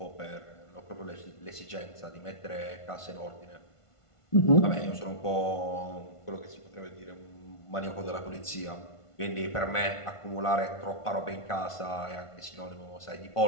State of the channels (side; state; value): right; late; 1.5 ms